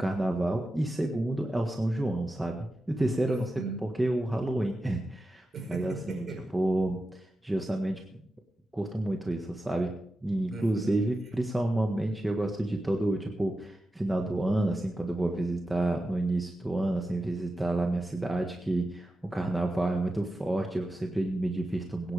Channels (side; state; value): both; normal; correlation 0.91